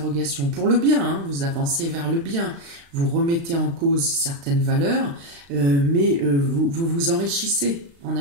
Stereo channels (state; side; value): late; left; 35 ms